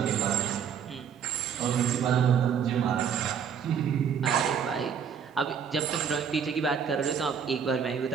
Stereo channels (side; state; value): left; quieter; 7.4 dB